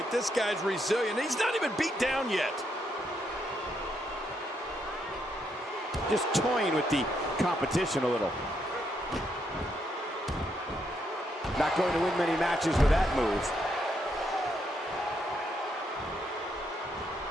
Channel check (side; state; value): both; normal; correlation 0.77